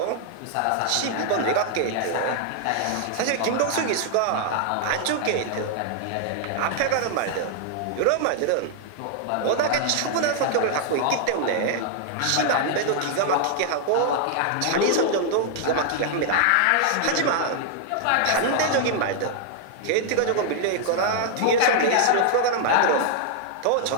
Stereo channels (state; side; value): different; both; correlation 0.00